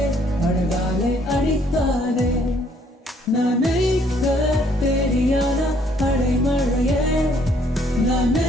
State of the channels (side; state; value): both; normal; correlation 0.65